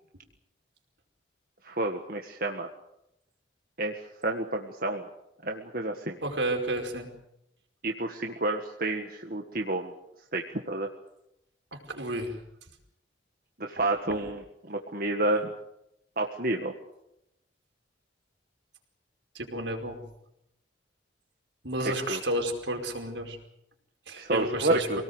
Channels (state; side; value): normal; both; correlation -0.01